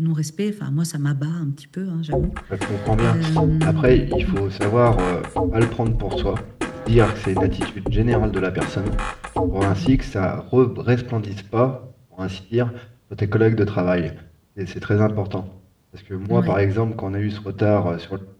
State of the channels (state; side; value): identical; both; correlation 1.00